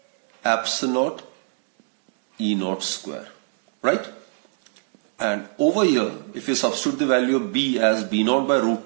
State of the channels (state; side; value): silent; left; digital silence